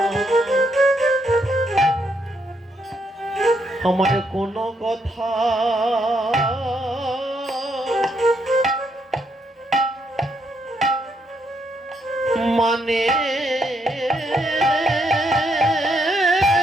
আমার কোনো কথা মানে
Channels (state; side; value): normal; both; correlation 0.76